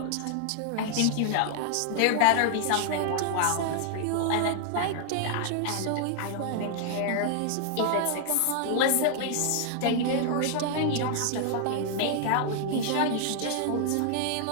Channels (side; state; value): both; different; correlation 0.00